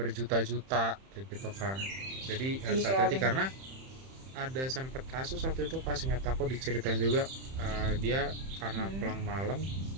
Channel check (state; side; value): late; left; 31 ms